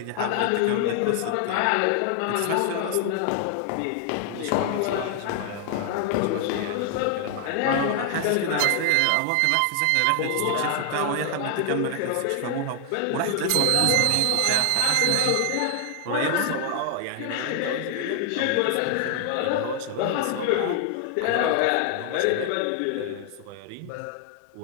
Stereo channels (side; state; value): both; different; correlation 0.00